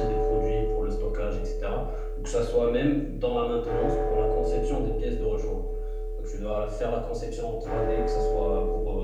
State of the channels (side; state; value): both; identical; correlation 1.00